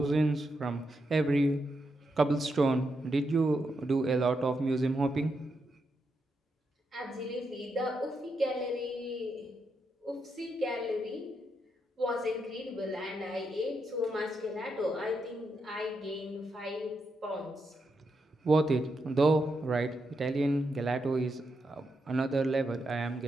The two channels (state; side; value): normal; both; correlation 0.83